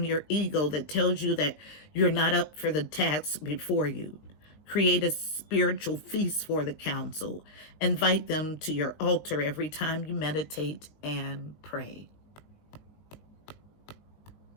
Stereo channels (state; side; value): late; right; 19 ms